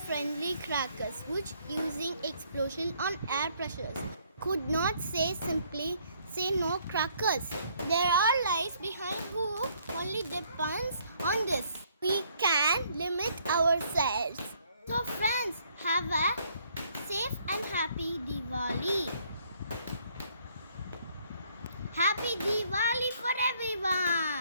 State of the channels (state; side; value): inverted; both; correlation -0.65